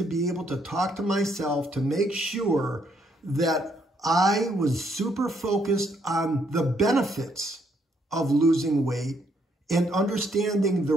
be able to talk to myself to make sure that I was super focused on the benefits of losing weight and understanding the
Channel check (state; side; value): normal; both; correlation 0.71